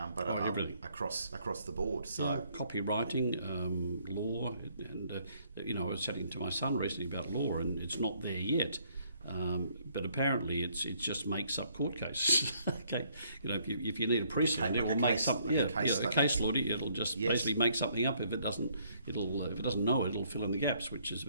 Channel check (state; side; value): inverted; both; correlation -0.67